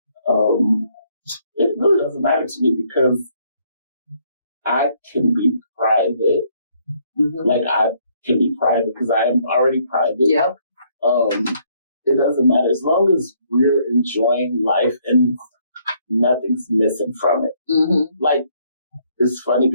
it really doesn't matter to me because I can be private. Mm-hmm. Like I can be private because I am already private. Yep. It doesn't matter as long as we're enjoying life and nothing's missing from it. Mm-hmm. Like, it's funny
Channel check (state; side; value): inverted; both; correlation -0.68